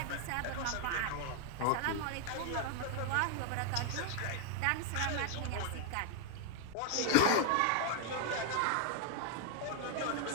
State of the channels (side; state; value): both; different; correlation 0.00